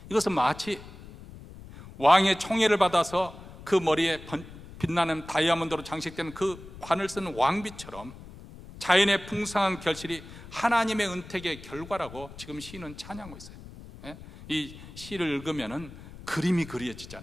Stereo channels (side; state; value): left; noise; rumble, 16 dB below the sound